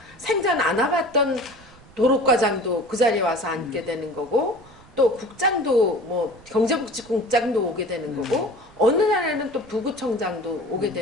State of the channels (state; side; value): noise; right; rumble, 24 dB below the sound